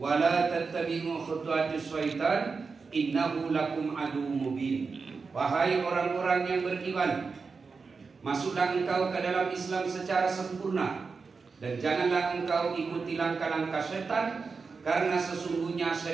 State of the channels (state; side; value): quieter; left; 4.8 dB